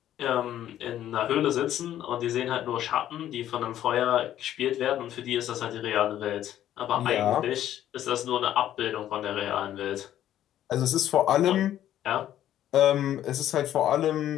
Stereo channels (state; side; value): quieter; right; 11.9 dB